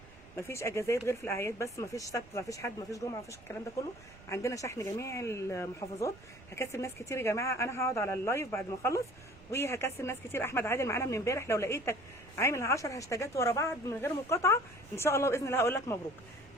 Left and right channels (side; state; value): right; noise; rumble, 22 dB below the sound